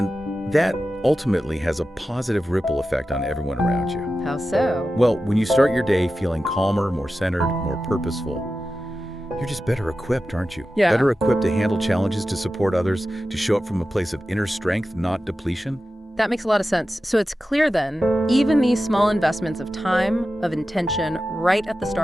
that ultimately has a positive ripple effect on everyone around you. How so? Well, when you start your day feeling calmer, more centered, more purposeful, you're just better equipped, aren't you? Yeah. Better equipped to handle challenges, to support others, to show up from a place of inner strength, not depletion. That makes a lot of sense. So it's clear then, even these small investments of time, of intention, right at the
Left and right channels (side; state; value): both; normal; correlation 0.93